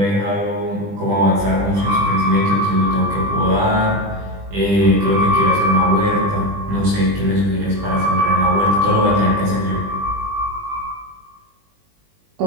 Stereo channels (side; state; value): left; late; 20 ms